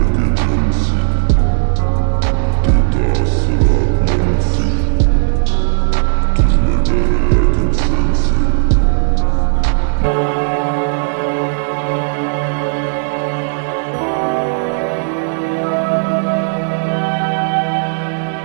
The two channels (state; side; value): silent; left; digital silence